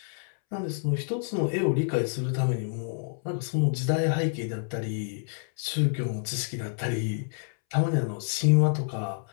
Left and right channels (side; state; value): right; silent; 59 dB below the other